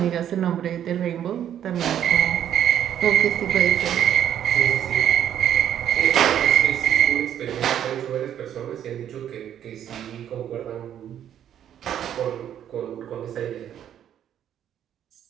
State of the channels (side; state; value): left; quieter; 10.1 dB